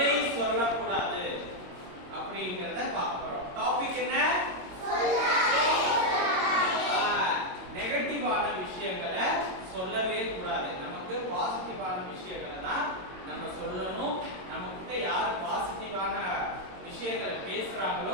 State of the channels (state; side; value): late; left; 22 ms